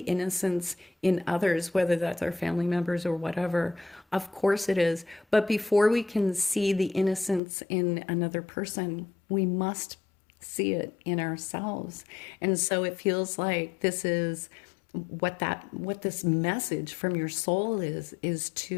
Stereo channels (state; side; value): drops out; right; at 7.4 s